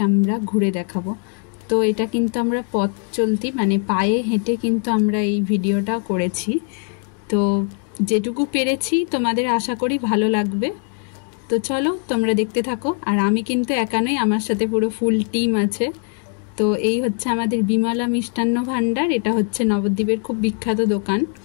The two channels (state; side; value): quieter; right; 39.3 dB